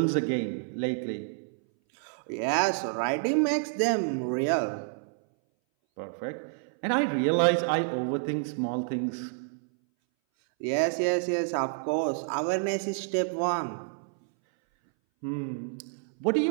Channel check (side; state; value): left; silent; 59 dB below the other